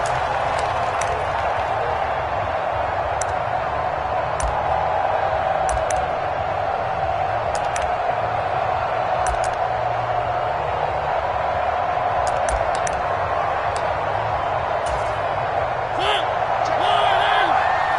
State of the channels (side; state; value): both; identical; correlation 1.00